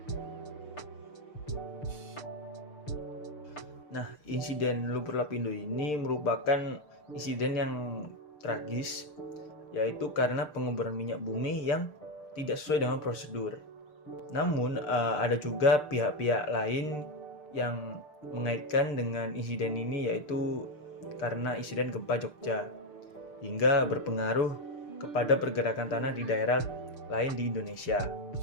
Nah, insiden lumpur Lapindo ini merupakan insiden yang tragis, yaitu karena penguburan minyak bumi yang tidak sesuai dengan prosedur. Namun, ada juga pihak-pihak lain yang mengaitkan dengan insiden ini, yaitu karena insiden gempa Jogja, hingga berpengaruh kepada pergerakan tanah di daerah lain di Indonesia.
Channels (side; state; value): right; late; 6.7 ms